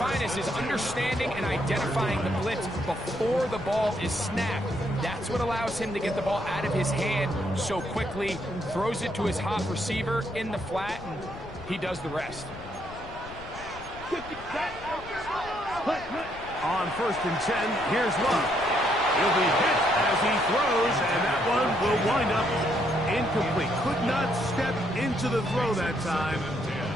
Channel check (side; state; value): left; noise; rumble, 16 dB below the sound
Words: is understanding and identifying the blitz before the ball is snapped. That's what allows him to get the ball out of his hand so quickly, throws it to his hot receiver in the flat, and he does the rest. On 1st and 10, here's Love. He'll be hit as he throws, and that one will wind up incomplete. Could not step into the throw that time.